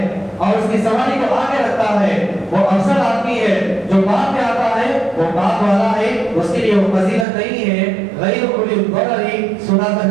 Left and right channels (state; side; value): drops out; left; at 7.2 s